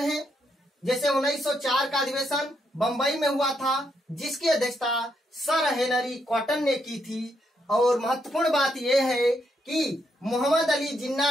जैसे 1904 का अधिवेशन बंबई में हुआ था, जिसकी अध्यक्षता सर हेनरी कॉटन ने की थी। और महत्वपूर्ण बात यह है कि मोहम्मद अली जिन्ना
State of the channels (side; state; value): both; normal; correlation 0.78